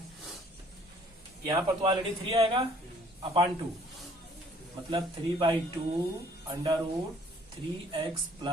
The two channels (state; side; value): normal; both; correlation 0.58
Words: यहाँ पर तो ऑलरेडी 3 आएगा अपान 2, मतलब 3/2 अंडर रूट 3x